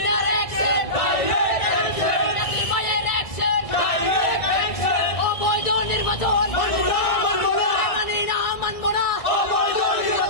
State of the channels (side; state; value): right; late; 1.3 ms